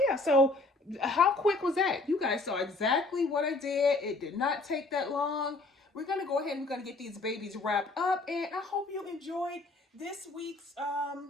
so how quick was that? You guys saw exactly what I did. It did not take that long. We're going to go ahead and we're going to get these babies wrapped up. And I hope you enjoyed this week's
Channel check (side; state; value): right; quieter; 3.2 dB